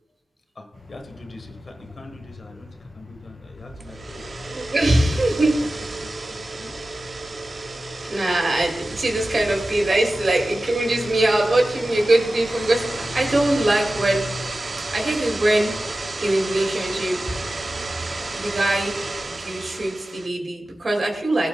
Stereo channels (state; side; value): normal; both; correlation 0.95